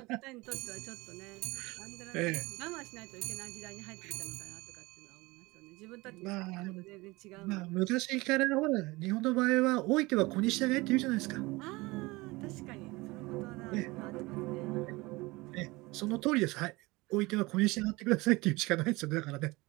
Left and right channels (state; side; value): quieter; left; 22.5 dB